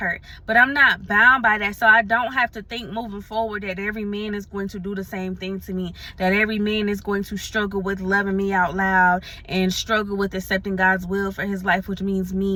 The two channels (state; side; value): identical; both; correlation 1.00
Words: but I'm not bound by that. So I don't have to think moving forward that every man is going to do the same thing to me, that every man is going to struggle with loving me out loud and struggle with accepting God's will for his life, which means